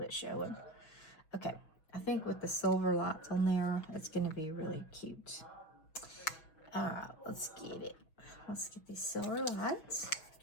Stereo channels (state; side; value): late; right; 6.2 ms